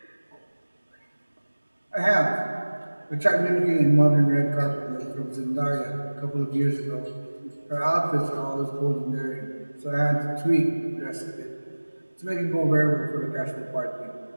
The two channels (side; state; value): both; inverted; correlation -1.00